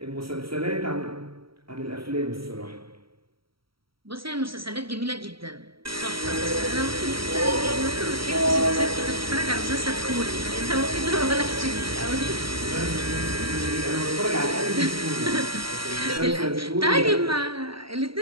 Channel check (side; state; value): left; late; 0.75 ms